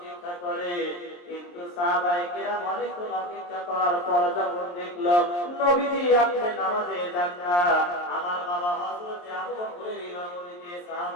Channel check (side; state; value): right; late; 23 ms